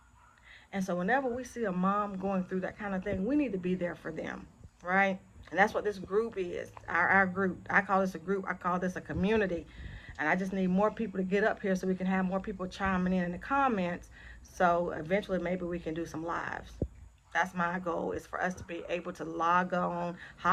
And so whenever we see a mom going through that kind of thing, we need to be there for them, right? And that's what this group is. Our group. I call this a group. I call this a community. And I just need more people to get up here so we can have more people chiming in the comments. So eventually maybe we can do some lives. That's my goal, is for us to be able to log on,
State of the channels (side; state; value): both; identical; correlation 1.00